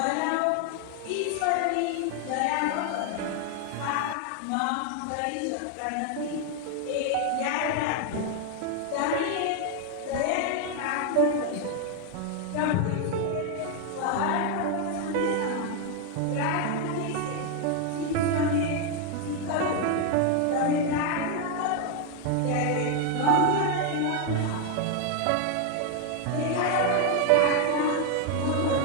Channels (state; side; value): different; both; correlation 0.01